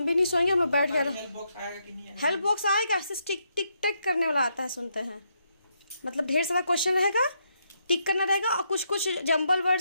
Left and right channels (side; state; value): both; inverted; correlation -0.78